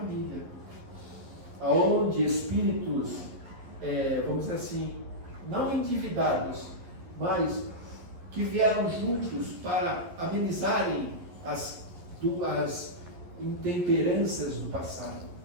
aonde espíritos, vamos dizer assim, não endividados, mas que vieram juntos para amenizarem as intemperanças do passado.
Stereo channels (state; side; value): late; left; 11 ms